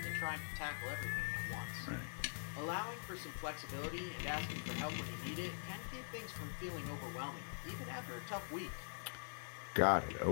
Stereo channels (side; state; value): right; silent; digital silence